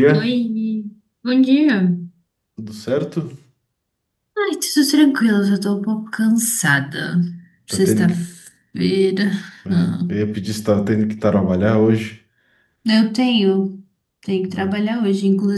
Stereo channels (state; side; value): identical; both; correlation 1.00